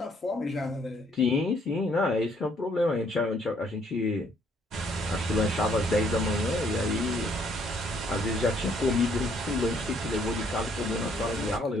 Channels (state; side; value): normal; both; correlation 0.66